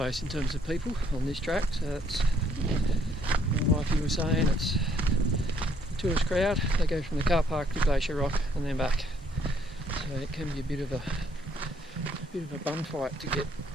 in terms of people on this track, so that's, my wife, you were saying, it's a tourist crowd. They go from the car park to Glacier Rock and then back, so it can be a bit of a bun fight to get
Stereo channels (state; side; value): normal; both; correlation 0.67